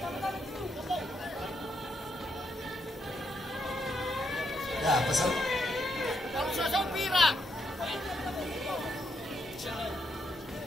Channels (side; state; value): both; normal; correlation 0.78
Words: Ya, pesan. Kalau saya pira.